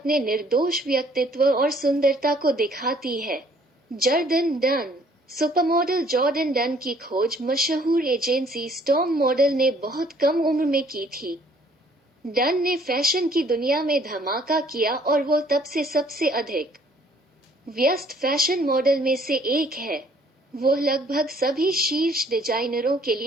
निर्दोष व्यक्तित्व और सुंदरता को दिखाती है। Jordan done. Supermodel Jordan done की खोज मशहूर एजेंसी स्टॉर्म मॉडल ने बहुत कम उम्र में की थी। डन ने फैशन की दुनिया में धमाका किया और वो तब से सबसे अधिक व्यस्त फैशन मॉडल में से एक है। वो लगभग सभी शीर्ष डिजाइनरों के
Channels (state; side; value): normal; both; correlation 0.60